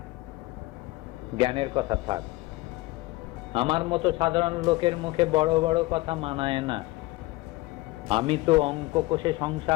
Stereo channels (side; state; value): right; quieter; 20.5 dB